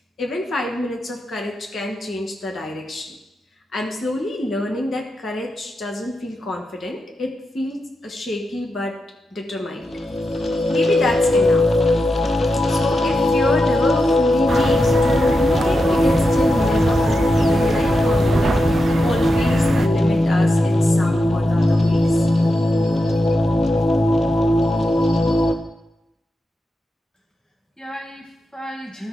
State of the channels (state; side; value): normal; both; correlation 0.88